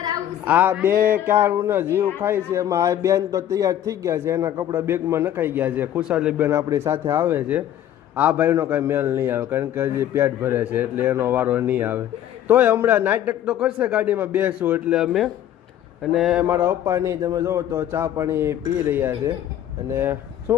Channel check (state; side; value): quieter; right; 11.2 dB